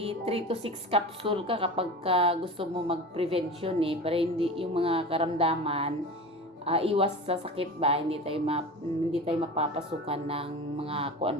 to 6 capsule ka kapag gusto mo mag-prevention para hindi yung mga karamdaman, iwas sa sakit ba, hindi tayo mapapasukan ng mga kung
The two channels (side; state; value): both; normal; correlation 0.32